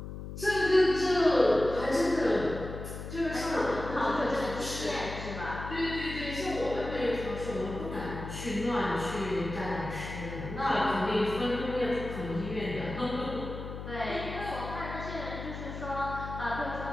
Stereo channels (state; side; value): noise; left; hum, 8 dB below the sound